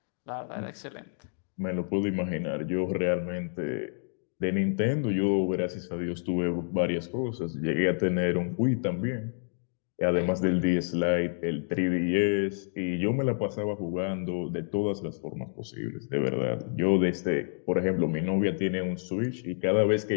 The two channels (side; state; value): right; silent; digital silence